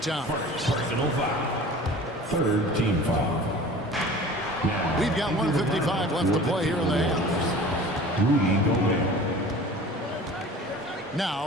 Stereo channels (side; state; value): both; normal; correlation 0.42